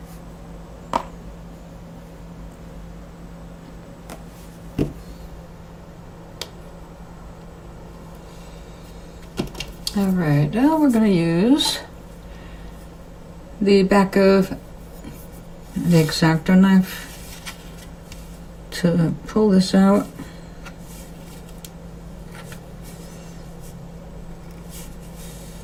Alright, now we're going to use the back of the X-Acto knife to pull this out.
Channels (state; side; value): identical; both; correlation 1.00